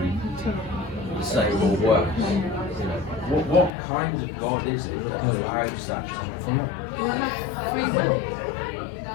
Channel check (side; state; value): right; drops out; at 3.7 s